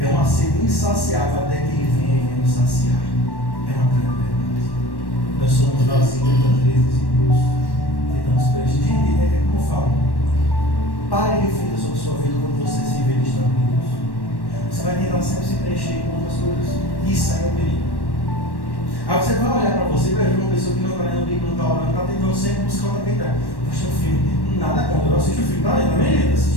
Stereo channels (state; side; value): late; right; 1.1 ms